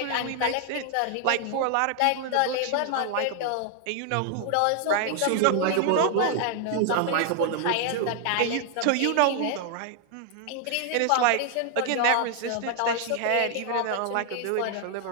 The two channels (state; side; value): different; both; correlation 0.00